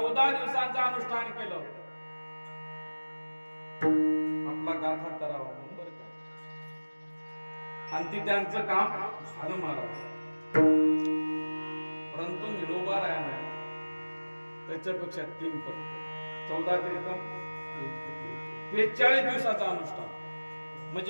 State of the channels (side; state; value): both; inverted; correlation -1.00